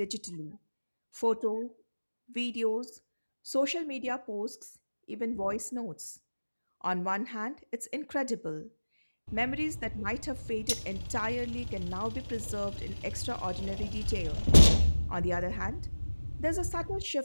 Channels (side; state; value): both; inverted; correlation -1.00